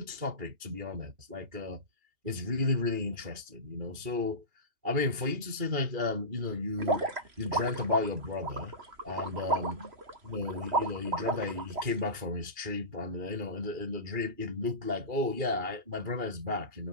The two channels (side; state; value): left; late; 2.4 ms